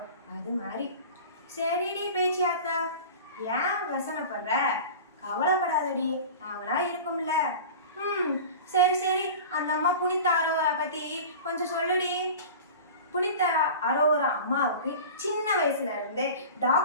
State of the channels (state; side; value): inverted; both; correlation -0.35